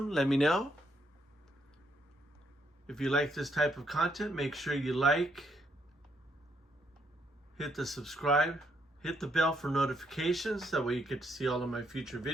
let me know. If you like this type of content, make sure you like, hit the subscribe, hit the bell for notifications. That way you get to see all of my future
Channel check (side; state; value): both; normal; correlation 0.73